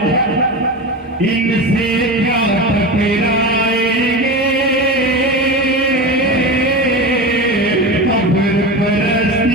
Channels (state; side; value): normal; both; correlation 0.24